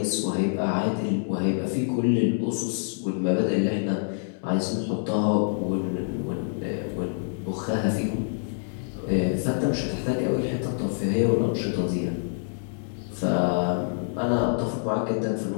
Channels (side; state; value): right; silent; digital silence